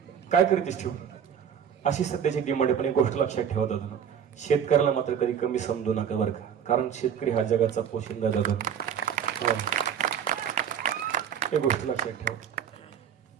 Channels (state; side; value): quieter; left; 8.3 dB